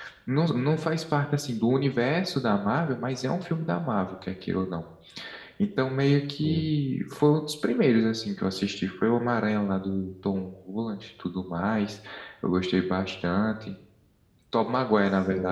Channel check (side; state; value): both; identical; correlation 1.00